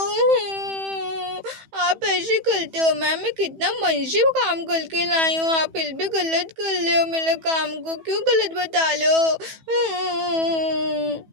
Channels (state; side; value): late; left; 15 ms